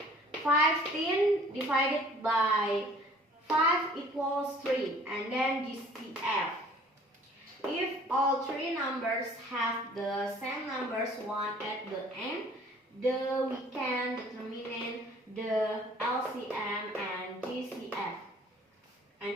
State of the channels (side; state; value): both; normal; correlation 0.53